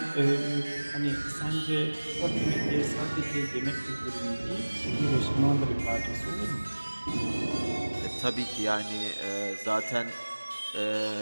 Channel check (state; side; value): inverted; both; correlation -1.00